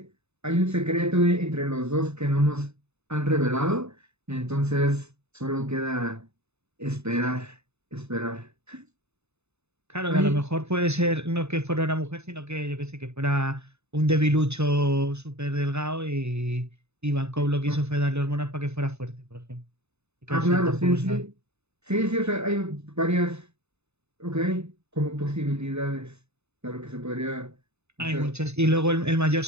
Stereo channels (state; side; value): late; left; 0.81 ms